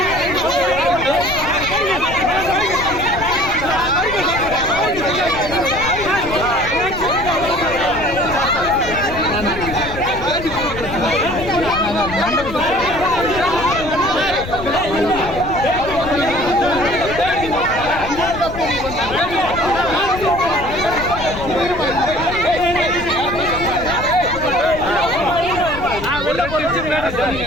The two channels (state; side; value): noise; left; rumble, 10 dB below the sound